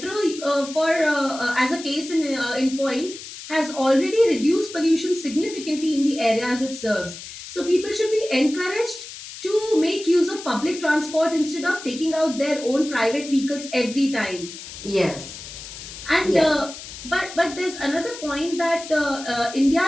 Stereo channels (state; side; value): noise; left; hiss, 13 dB below the sound